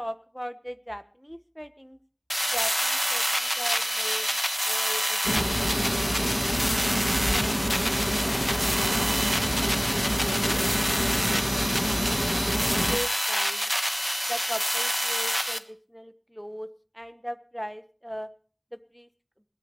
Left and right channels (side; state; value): both; identical; correlation 1.00